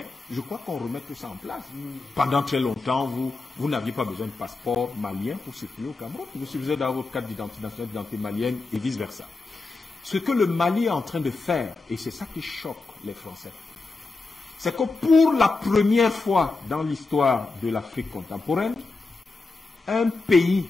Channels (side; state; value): right; quieter; 3.6 dB